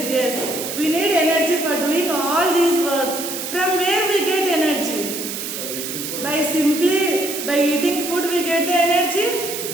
yes. We need energy for doing all these works. From where we get energy? By eating food we get the energy?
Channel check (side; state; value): right; noise; hiss, 6 dB below the sound